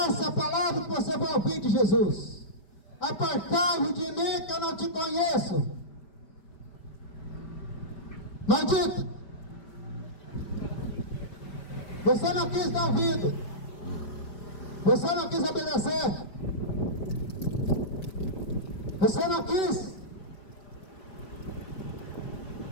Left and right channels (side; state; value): right; late; 5.0 ms